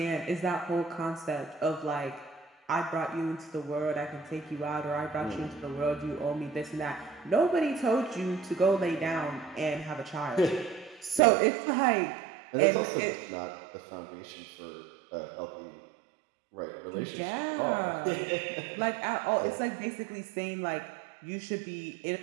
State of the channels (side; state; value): left; drops out; at 11.2 s